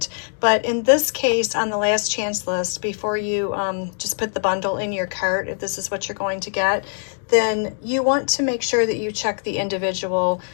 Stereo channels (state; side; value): silent; right; digital silence